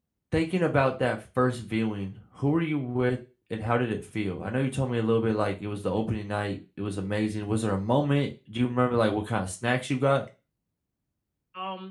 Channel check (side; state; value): both; identical; correlation 1.00